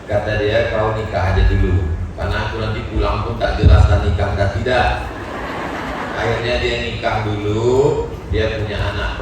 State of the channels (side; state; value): both; identical; correlation 1.00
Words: Kata dia, kau nikah aja dulu, karena aku nanti pulang pun tak jelas dan nikah dan tidak. Akhirnya dia nikah dulu. Dia punya anak